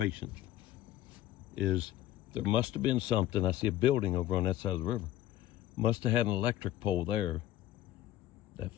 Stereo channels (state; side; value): quieter; right; 13.9 dB